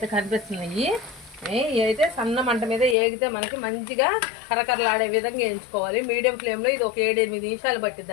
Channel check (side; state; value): right; drops out; at 3.0 s